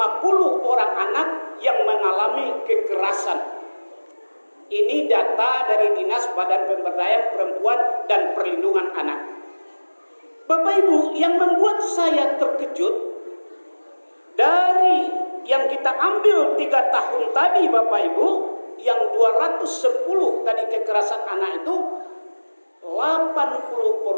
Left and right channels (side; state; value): both; inverted; correlation -1.00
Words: orang anak yang mengalami kekerasan. Ini data dari Dinas Badan Pemberdayaan Perempuan dan Perlindungan Anak. Bapak Ibu, yang membuat saya terkejut dari yang kita ambil 3 tahun tadi Bapak Ibu, yang 210 tadi kekerasan anak itu,